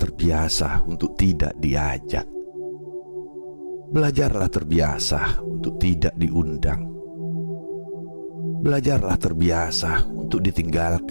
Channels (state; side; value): inverted; both; correlation -1.00